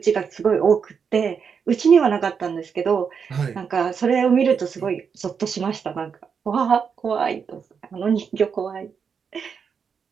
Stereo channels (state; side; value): quieter; left; 6.4 dB